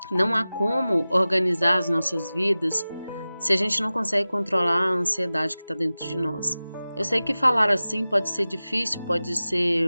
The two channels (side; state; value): both; inverted; correlation -0.97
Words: Não há como organizar as nossas vidas se a gente não consegue controlar a ansiedade que está dentro de nós. Eu sei que falar assim pode ser difícil, pode